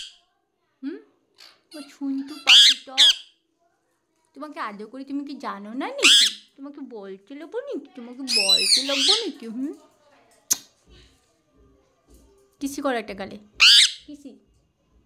শুনতু পাখিটা, তোমাকে আদর করি, তুমি কি জানো না নাকি? তোমাকে বলতে লাগবো নাকি? তোমাকে বলতে লাগবো নাকি? কিসি করো একটা গালে, কিসি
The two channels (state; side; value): identical; both; correlation 1.00